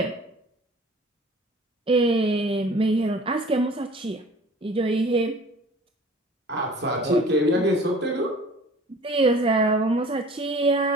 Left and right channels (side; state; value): both; normal; correlation 0.47